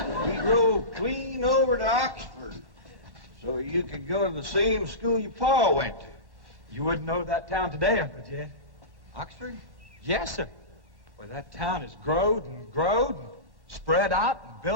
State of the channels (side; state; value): left; late; 1.1 ms